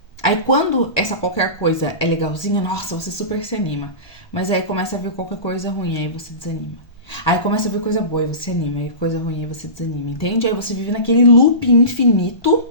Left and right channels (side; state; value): right; late; 1.3 ms